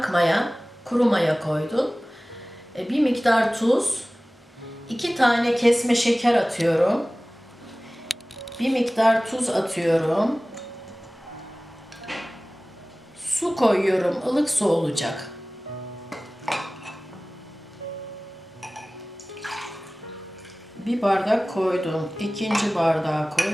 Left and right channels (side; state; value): both; normal; correlation 0.98